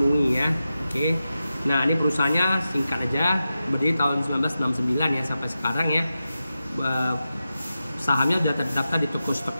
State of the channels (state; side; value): inverted; both; correlation -0.91